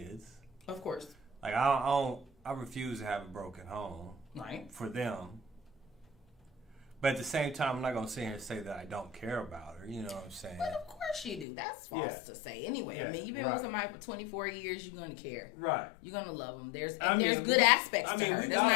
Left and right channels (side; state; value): right; drops out; at 11.5 s